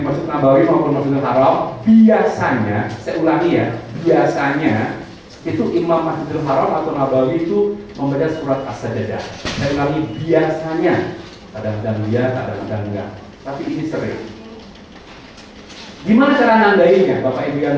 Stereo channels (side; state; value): both; identical; correlation 1.00